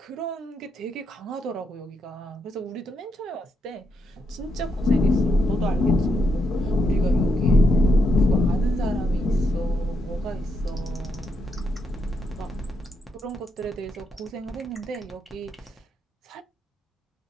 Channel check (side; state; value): both; normal; correlation 0.80